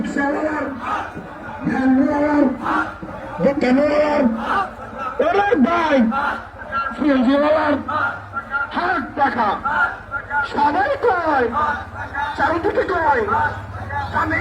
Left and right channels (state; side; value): identical; both; correlation 1.00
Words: ভ্যানওয়ালার দোকানওয়ালার অনেক ভাই ফ্রিজওয়ালার হাত পাকা সবাই কয় চারিদিকে কয়